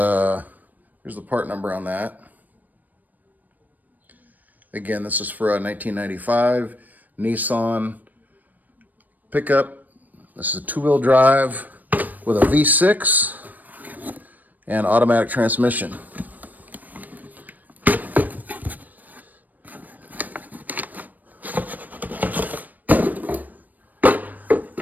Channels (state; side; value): late; left; 0.083 ms